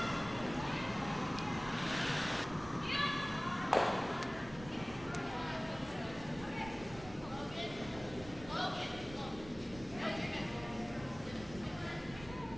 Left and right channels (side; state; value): right; noise; rumble, 15 dB below the sound